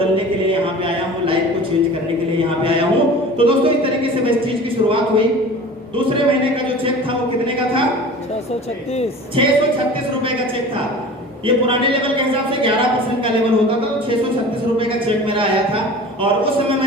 के लिए यहाँ पे आया हूँ, लाइफ को चेंज करने के लिए यहाँ पे आया हूँ। तो दोस्तों इस तरीके से वेस्टेज की शुरुआत हुई। दूसरे महीने का जो चेक था वो कितने का था? 636 रुपए का चेक था। ये पुराने लेवल के हिसाब से 11% का लेवल होता था, तो 636 रुपए का चेक मेरा आया था। और उस समय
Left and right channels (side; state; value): both; normal; correlation 0.39